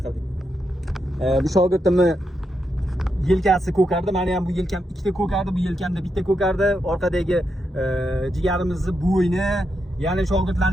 Bu shogirdimni yelkasi ko'kardi. Meni ham bu yelkam ikkita ko'kardi, bu yelkamda bitta ko'kardi. Orqadagi jigarimizni bo'yni, Ya'ni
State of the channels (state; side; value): normal; both; correlation 0.84